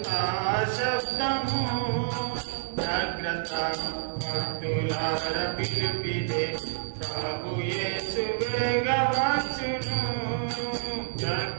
శబ్దము. జాగ్రత్త భక్తులార పిలుపిదే ప్రభు యేసు వేగవచ్చును.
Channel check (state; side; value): silent; left; digital silence